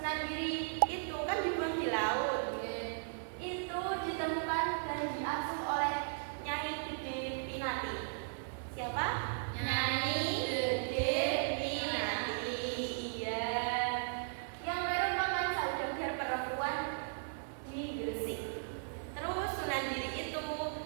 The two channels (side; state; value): left; silent; 53 dB below the other